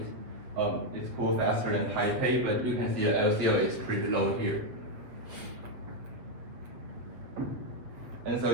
cool faster than Taipei, but you can see the LCO is pretty low here. And so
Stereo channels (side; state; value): left; late; 7.9 ms